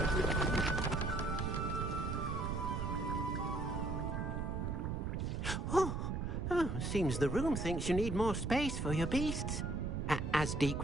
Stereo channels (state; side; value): noise; right; rumble, 2 dB below the sound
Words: Seems the room thinks you need more space for your beasts. As Deke